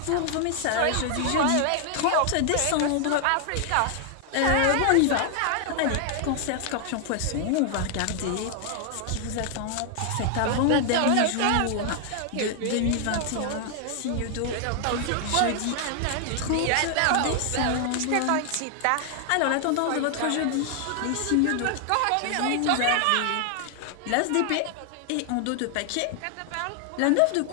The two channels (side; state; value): both; different; correlation 0.00